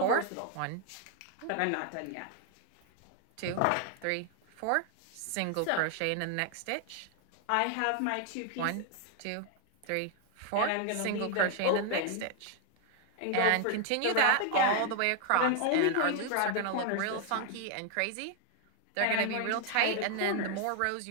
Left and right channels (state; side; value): different; both; correlation 0.00